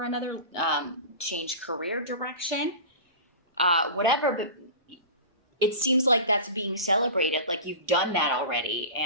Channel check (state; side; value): inverted; both; correlation -0.32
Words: another. Change career direction. Whatever. But it seems like that's being celebrated. Like you've done that already.